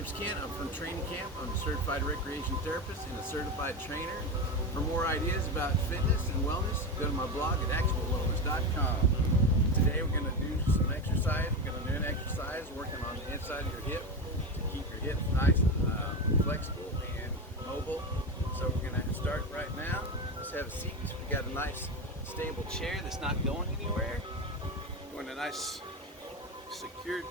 Ken. I'm from Training Camp. I'm a certified recreation therapist and a certified trainer. For more ideas about fitness and wellness, go to my blog at actualwellness.com. Today we're going to do some exercise. We're going to do an exercise working on the inside of your hip to keep your hips nice and flexible and mobile. So we're going to start right now. Let's have a seat. We got a nice stable chair that's not going anywhere. We want a nice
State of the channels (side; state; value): both; normal; correlation 0.18